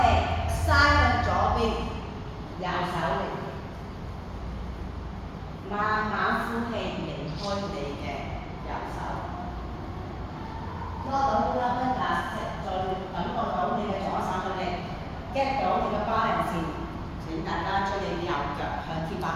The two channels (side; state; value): both; identical; correlation 1.00